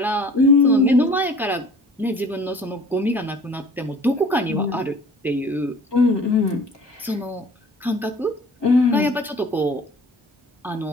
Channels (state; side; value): normal; both; correlation 0.47